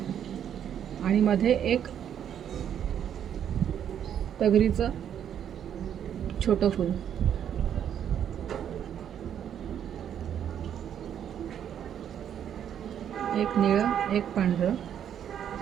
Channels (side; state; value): left; quieter; 9.3 dB